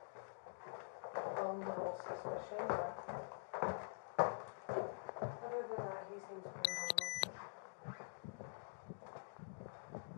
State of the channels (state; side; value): silent; right; digital silence